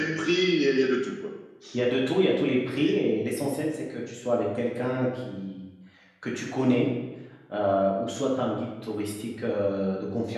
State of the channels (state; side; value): identical; both; correlation 1.00